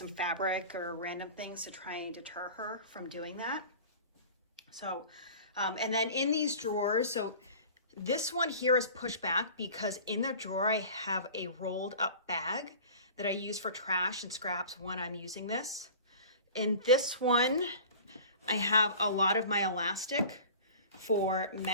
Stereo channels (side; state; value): both; inverted; correlation -0.41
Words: fabric or random things to try and deter her from doing that. So, and then in these drawers, so this one here is pushed back because in the drawer I have a rolled up bag that I use for trash and scraps when I'm using this. In this one, I have a lot of my elastic for